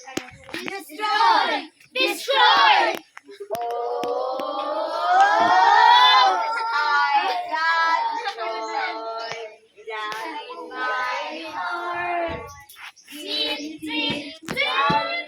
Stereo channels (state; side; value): identical; both; correlation 1.00